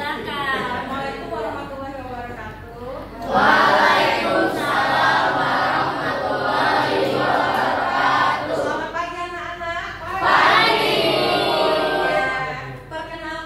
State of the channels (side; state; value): both; identical; correlation 1.00